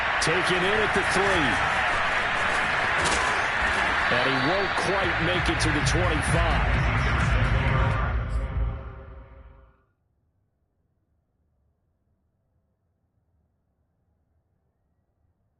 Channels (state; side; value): identical; both; correlation 1.00